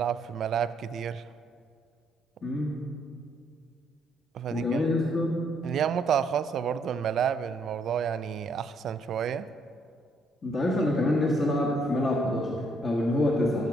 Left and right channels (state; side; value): normal; both; correlation 0.70